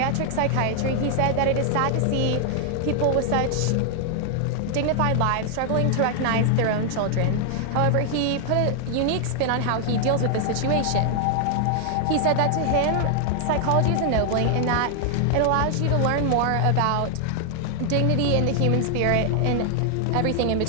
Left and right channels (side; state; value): both; different; correlation 0.00